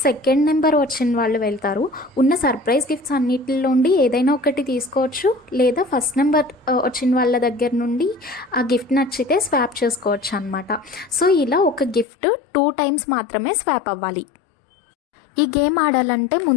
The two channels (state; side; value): drops out; right; at 12.1 s